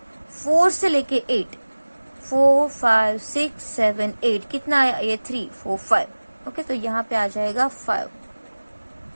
4 से लेके 8, 4 5 6 7 8, कितना आया ये 3 4 5। ओके, तो यहाँ पे आ जाएगा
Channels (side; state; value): both; inverted; correlation -1.00